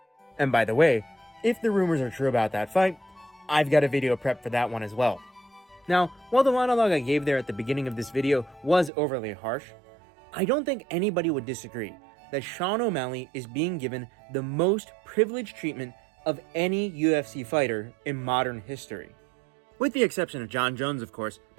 And by the way, if the rumors are true about that fight, I've got a video prep for that one as well. Now, while the monologue I gave there at the beginning of this video was overly harsh, I don't think anybody would disagree that Sean O'Malley is being given the most privileged treatment of any UFC fighter in modern history. With the exception of John Jones, of course,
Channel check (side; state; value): left; drops out; at 8.9 s